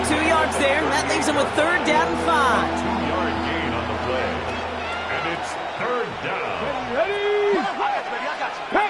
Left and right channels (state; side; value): identical; both; correlation 1.00